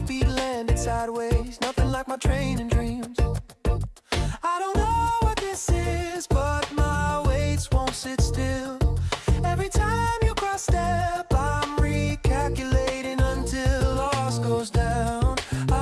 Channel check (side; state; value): both; identical; correlation 1.00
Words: landed sideways. Nothing like my training dreams. I don't know what this is, but my weights won't sit still. Every time you cross step, I'm recalculating until loss goes down.